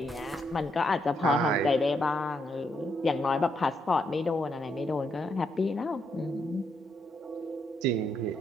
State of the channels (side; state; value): both; normal; correlation 0.77